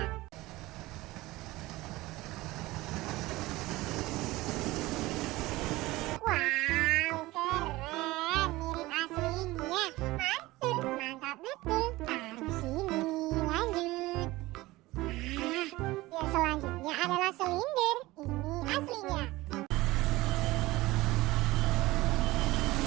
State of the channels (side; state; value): left; quieter; 19.3 dB